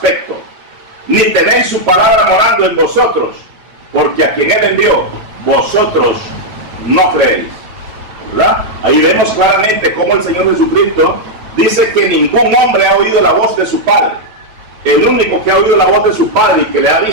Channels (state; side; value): late; left; 9.3 ms